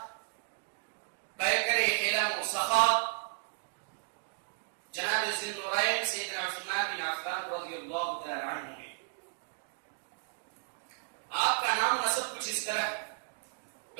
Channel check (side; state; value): left; silent; 55 dB below the other